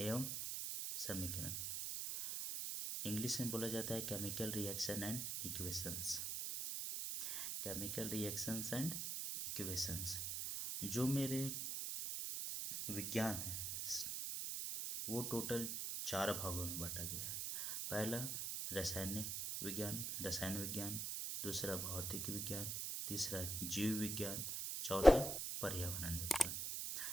समीकरण। इंग्लिश में बोला जाता है chemical reaction and equations. Chemical reactions and equations जो मेरे विज्ञान है वो टोटल 4 भागों में बांटा गया है। पहला रसायन विज्ञान, दूसरा भौतिक विज्ञान, तीसरा जीव विज्ञान, चौथा पर्यावरण विज्ञान।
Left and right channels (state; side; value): noise; right; hiss, 2 dB below the sound